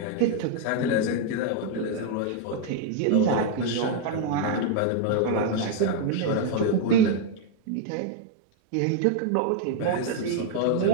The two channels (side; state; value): both; different; correlation 0.00